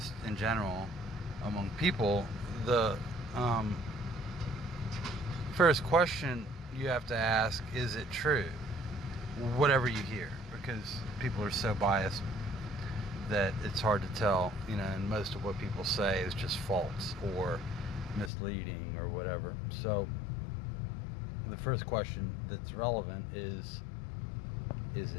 in general among people, the first question you have to ask, is it true? Whatever you hear, because people are so biased that it's hard to tell, and most of what people say is just false or misleading or whatever. So the first question that's relevant is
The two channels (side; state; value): right; drops out; at 18.3 s